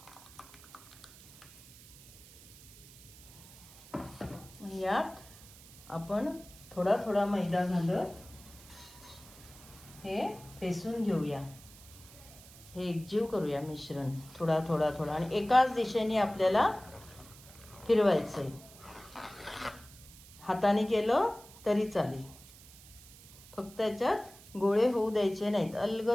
यात आपण थोडा थोडा मैदा घालत हे फेसून घेऊया. हे एकजीव करूया मिश्रण थोडा थोडा थोडा, आणि एकाच दिशेने आपल्याला फिरवायचंय. हाताने केलं तरी चालेल, फक्त याच्यात गोळे होऊ द्यायचे नाहीत.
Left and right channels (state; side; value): noise; right; hiss, 20 dB below the sound